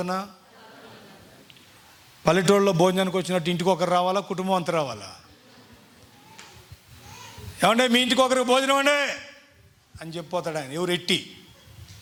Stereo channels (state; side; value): identical; both; correlation 1.00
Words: పల్లెటూళ్ళలో భోజనానికి వచ్చినట్టు ఇంటికి ఒకరు రావాలా, కుటుంబం అంతా రావాలా? ఏమంటే మీ ఇంటికి ఒకరికి భోజనం అండి అని చెప్పిపోతాడు ఆయన.